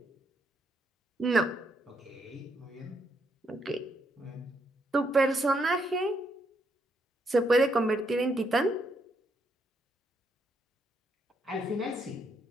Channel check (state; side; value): normal; both; correlation 0.76